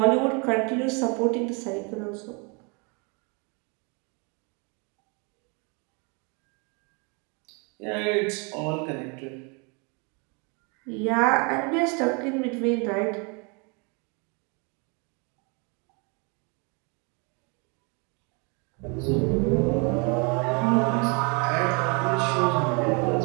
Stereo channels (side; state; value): left; quieter; 32.8 dB